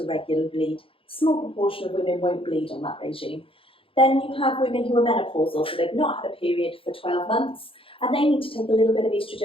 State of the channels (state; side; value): late; right; 0.26 ms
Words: regular bleed Small proportion of women won't bleed on that regime. Then you have women who are menopausal, so they've not had a period for 12 months, and they need to take a little bit of